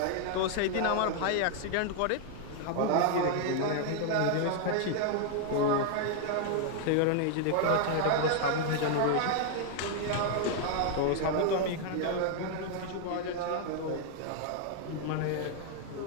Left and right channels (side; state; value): both; different; correlation 0.00